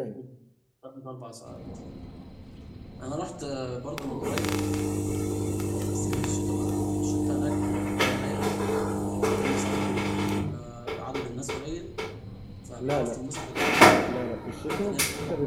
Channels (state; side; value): identical; both; correlation 1.00